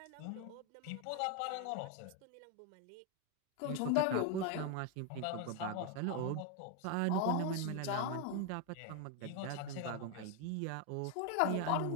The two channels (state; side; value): different; both; correlation 0.01